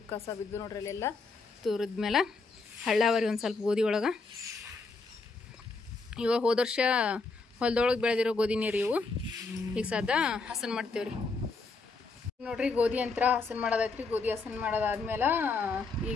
ಕಸ ಬಿದ್ದು ನೋಡ್ರಿ ಅಲ್ಲೆಲ್ಲ ತೂರಿದ್ಮೇಲೆ ಹಳ್ಳಾವರಿ ಒಂದು ಸ್ವಲ್ಪ ಗೋಧಿ ಒಳಗೆ. ಇವಾಗ ಹೋದ ವರ್ಷ ಹೊಲದೊಳಗೆ ಬೆಳೆದಿರೋ ಗೋಧಿ ನೀರು ಇವು. ಈಗ ಸದಾ ಹಸನ್ ಮಾಡ್ತೇವ್ರಿ ನೋಡ್ರಿ. ಗೋಧಿ ಅಂತ ಹಸನ್ ಮಾಡೋದೈತ್ರಿ. ಗೋಧಿ ಹಸನ್ ಮಾಡೋದಾದ್ಮೇಲೆ ಈಗ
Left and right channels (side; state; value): right; quieter; 4.0 dB